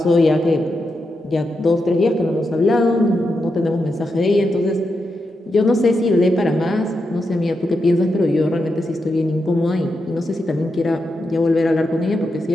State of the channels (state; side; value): normal; both; correlation 0.86